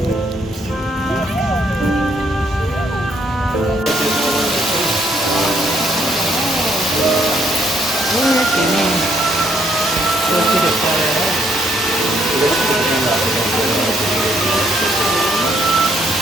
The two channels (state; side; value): normal; both; correlation 0.70